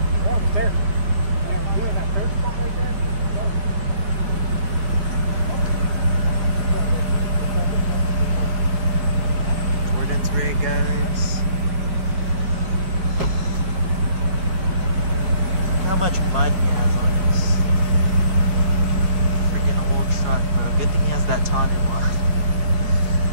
We're almost there. Yeah, you know that third spot right there? Jordan's rig, guys. How much mud he has on his freaking old truck, bro. Good thing he has that Tanu on.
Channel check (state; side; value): late; left; 5.2 ms